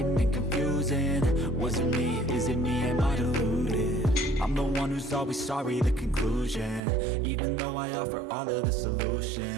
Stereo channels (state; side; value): drops out; left; at 6.8 s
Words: and confusing. Was it me? Is it me? Am I deluded? I'm the one who's always sorry, the conclusion, even though I offer all of the